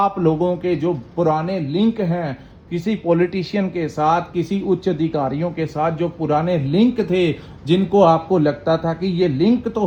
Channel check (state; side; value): identical; both; correlation 1.00